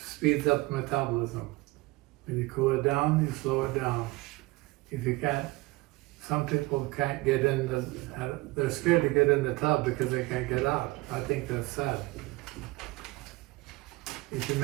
speeds up metabolism. When you cool it down, you slow it down. If you can't, some people can't get in they're scared to get in the tub because they can't get out. I think that's sad. If you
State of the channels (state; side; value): quieter; left; 22.2 dB